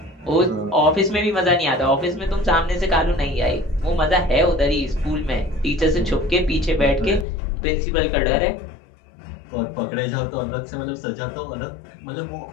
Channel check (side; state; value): right; drops out; at 7.2 s